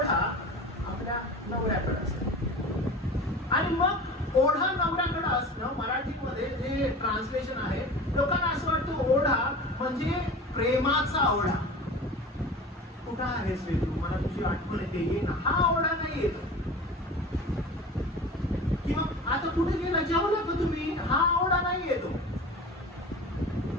आपल्या नवऱ्याकडे असेल. आणि मग ओढा नवऱ्याकडे असणं मराठीमध्ये जे ट्रान्सलेशन आहे, लोकांना असं वाटतं ओढा म्हणजे प्रेमाचा ओढा. कुठं आहेस रे तू? मला तुझी आठवण येते, ये ना. हा ओढा नाही येतो. किंवा आता कुठे गेला, जेवला का तुम्ही? हा ओढा नाही येतो.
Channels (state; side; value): normal; both; correlation 0.35